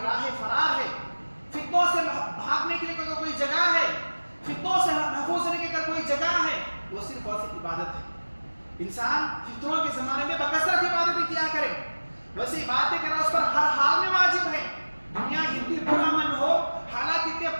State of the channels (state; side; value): inverted; both; correlation -1.00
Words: راہ فرار ہے، فتنوں سے بھاگنے کے لیے کوئی جگہ ہے، فتنوں سے محفوظ رہنے کی اگر کوئی جگہ ہے، وہ صرف اور صرف عبادت ہے۔ انسان فتنوں کے زمانے میں بکثرت عبادتیں کیا کرے، ویسے عبادتیں کرنا اس پر ہر حال میں واجب ہے۔ دنیا کتنی پرامن ہو، حالات کتنے